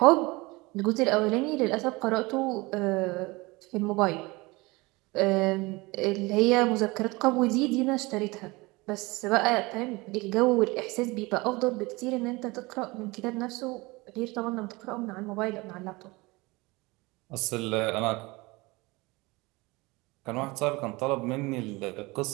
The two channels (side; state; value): left; quieter; 23.4 dB